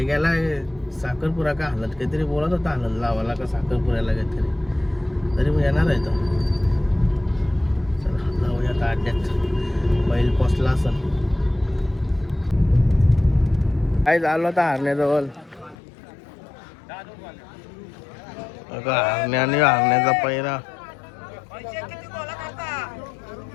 गेला साखरपुरा का हलत काहीतरी बोलत होता. हलत लावाला का साखरपुऱ्याला काहीतरी. तरी मग येणार आहे तो. चला जाऊया आता अड्ड्यात. बैल पोचला असं काय झालं होता हरण्याजवळ. हरण्या आणि हरण्याचा पैरा.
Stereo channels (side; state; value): right; drops out; at 15.8 s